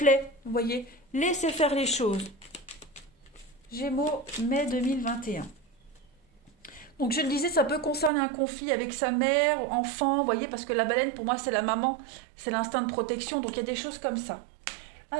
vous voyez. Laissez faire les choses. Gémeaux, mai 2021. Donc je le disais, ça peut concerner un conflit avec sa mère, enfant, vous voyez, parce que la baleine, pour moi, c'est la maman, c'est l'instinct de protection, donc il y a des choses comme ça.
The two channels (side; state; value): left; drops out; at 8.1 s